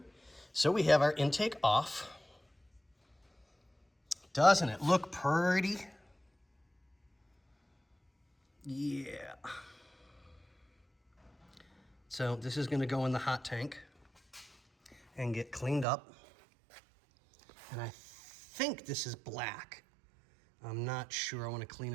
So we have our intake off. Doesn't it look pretty? Yeah. So this is gonna go in the hot tank and get cleaned up. And I think this is black. I'm not sure. I wanna clean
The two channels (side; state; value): left; drops out; at 15.9 s